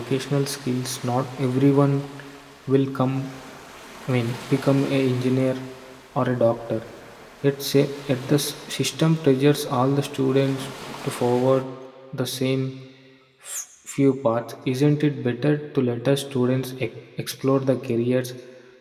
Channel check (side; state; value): both; identical; correlation 1.00